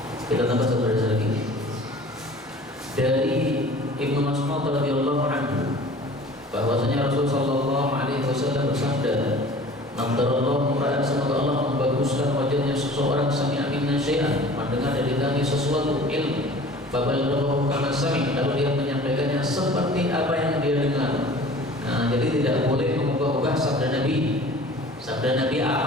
Kita tambah satu hadis lagi dari Ibnu Mas'ud radhiyallahu anhu, bahwasanya Rasulullah sallallahu alaihi wasallam bersabda, "Nadarallahu ra'an," semoga Allah membaguskan wajahnya seseorang, sami'a minna syai'an, mendengar dari kami sesuatu ilmu, fabalaghahu kama sami', lalu dia menyampaikannya seperti apa yang dia dengar. Nah, jadi tidak boleh mengubah-ubah sabda Nabi. Sabda Nabi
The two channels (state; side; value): normal; both; correlation 0.45